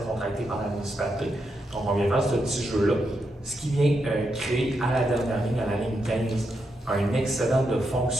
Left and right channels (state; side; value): normal; both; correlation 0.83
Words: contractées par la municipalité. Donc, on vient faire ce petit jeu-là, ce qui vient créer à la dernière ligne, à la ligne 15, un excédent de